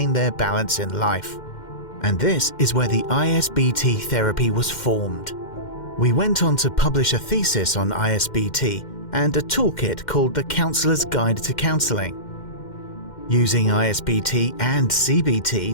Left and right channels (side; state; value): right; late; 2.1 ms